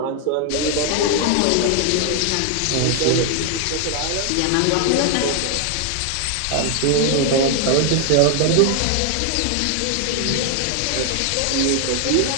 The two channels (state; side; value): different; both; correlation 0.00